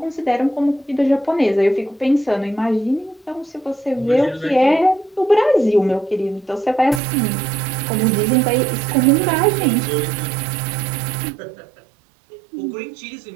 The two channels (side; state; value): left; drops out; at 7.0 s